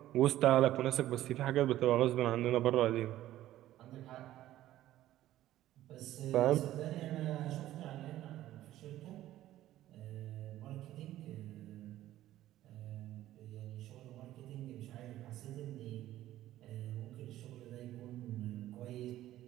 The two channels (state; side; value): quieter; left; 14.0 dB